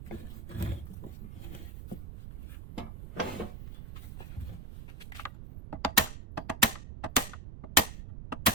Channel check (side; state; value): right; noise; rumble, 10 dB below the sound